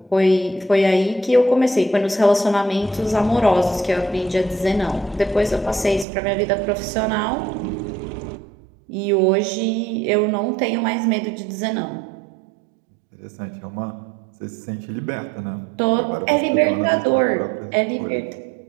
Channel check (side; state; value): left; drops out; at 6.1 s